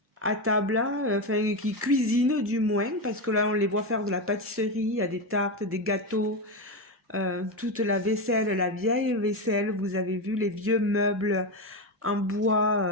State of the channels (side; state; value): both; normal; correlation 0.13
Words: à table, hein, enfin qui cuisinent du moins, parce que là on les voit faire de la pâtisserie, il y a des tartes, des gâteaux, toute la vaisselle, la vieille vaisselle, vous avez vu les vieux meubles en